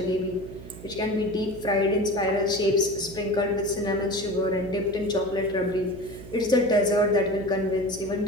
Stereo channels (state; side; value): noise; right; hum, 14 dB below the sound